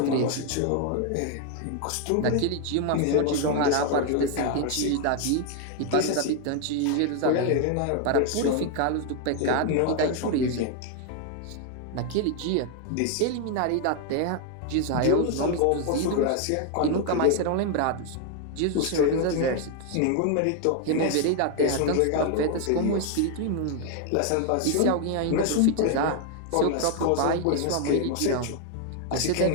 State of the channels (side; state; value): both; different; correlation 0.00